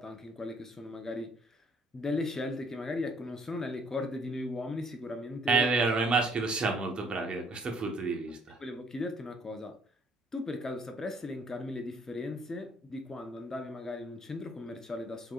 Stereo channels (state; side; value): normal; both; correlation 0.63